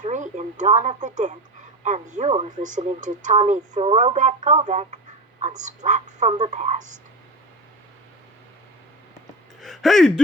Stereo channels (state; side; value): normal; both; correlation 0.26